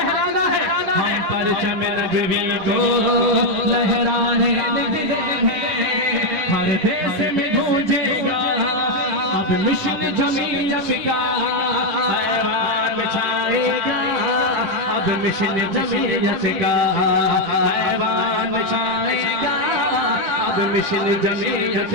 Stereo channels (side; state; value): left; late; 10 ms